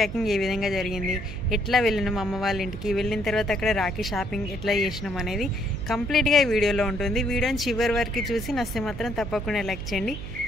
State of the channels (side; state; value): right; noise; hum, 9 dB below the sound